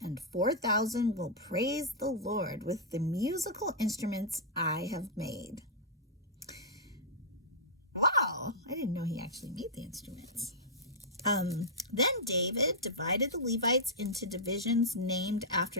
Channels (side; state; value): both; normal; correlation -0.10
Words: and 4,000 will praise the Lord with the musical instruments I have made. Wow, I didn't know he actually made the instruments. Then David divided the Levites into divisions named